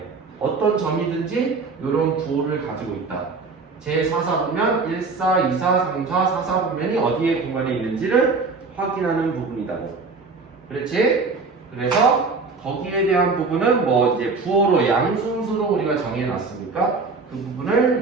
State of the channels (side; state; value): left; quieter; 4.2 dB